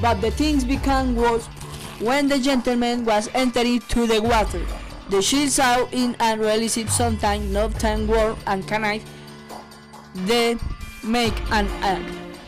but the things became worse when the gentleman was entering to the water. The shield saw in and realized sometime no time warm and knife they make an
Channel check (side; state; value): both; identical; correlation 1.00